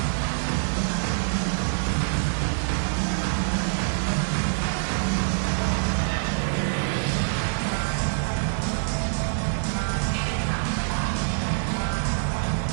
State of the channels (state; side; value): silent; left; digital silence